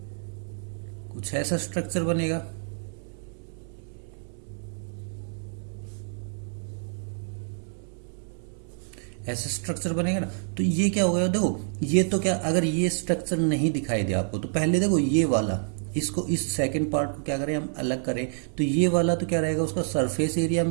कुछ ऐसा स्ट्रक्चर बनेगा। ऐसा स्ट्रक्चर बनेगा ना, तो ये क्या हो गया, देखो ये तो क्या, अगर ये स्ट्रक्चर नहीं दिखाई दे आपको तो पहले देखो ये वाला, इसको इस सेकंड पार्ट को क्या करें हम अलग करें, तो ये वाला तो क्या रहेगा, उसका सरफेस एरिया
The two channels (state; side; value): silent; left; 60 dB below the other